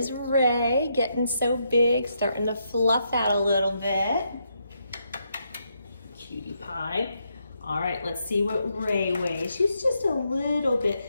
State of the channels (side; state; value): both; inverted; correlation -0.79